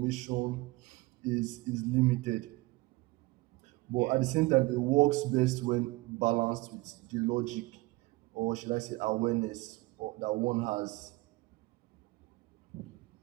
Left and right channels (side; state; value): left; quieter; 21.6 dB